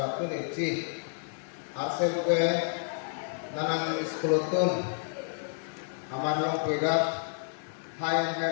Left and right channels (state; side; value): silent; right; digital silence